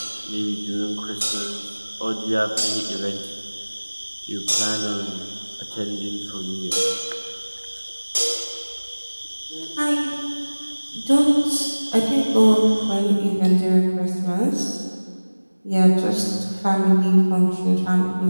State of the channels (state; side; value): inverted; both; correlation -1.00